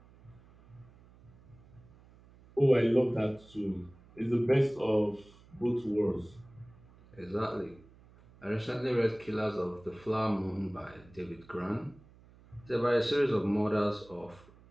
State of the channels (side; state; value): right; noise; hum, 25 dB below the sound